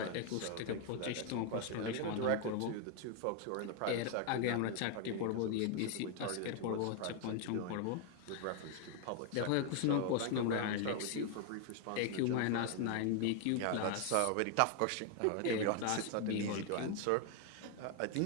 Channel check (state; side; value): different; both; correlation 0.01